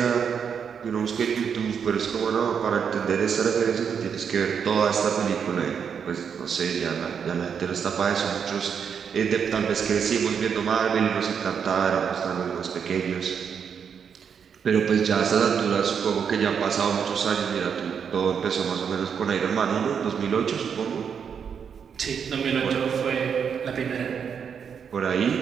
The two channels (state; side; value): quieter; left; 7.1 dB